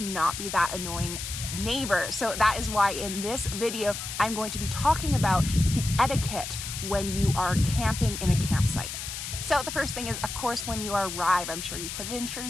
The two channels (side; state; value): left; noise; hiss, 7 dB below the sound